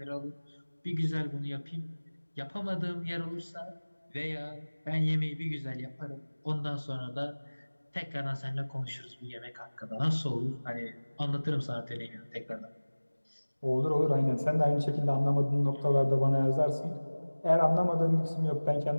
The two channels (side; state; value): both; inverted; correlation -1.00